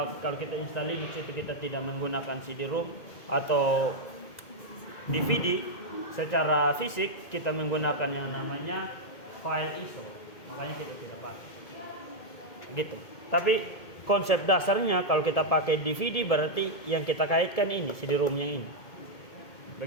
kalau kita install Linux itu kita tidak menggunakan CD-ROM atau DVD secara fisik, kita menggunakan yang namanya file ISO. Makanya kita tidak pakai. Gitu. Tapi konsep dasarnya kalau kita pakai DVD berarti yang kita kaitkan ini CD-ROM yang ini.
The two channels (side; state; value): right; late; 2.2 ms